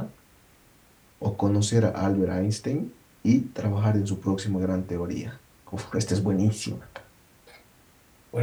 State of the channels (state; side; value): identical; both; correlation 1.00